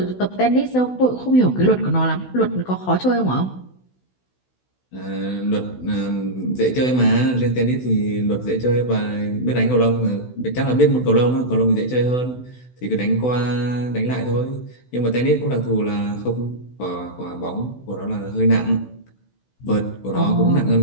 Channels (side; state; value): right; late; 16 ms